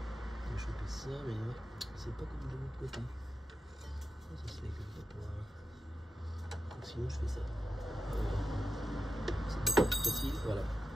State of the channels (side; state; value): both; normal; correlation 0.90